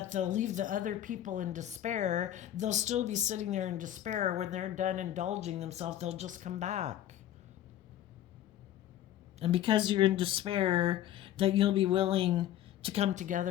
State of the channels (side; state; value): right; quieter; 12.1 dB